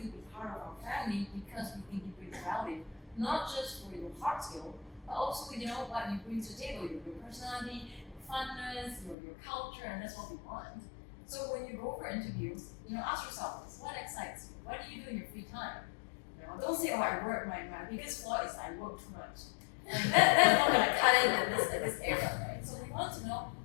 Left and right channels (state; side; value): drops out; right; at 9.2 s